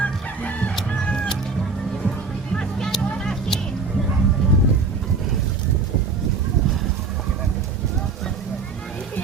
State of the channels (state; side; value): quieter; left; 4.6 dB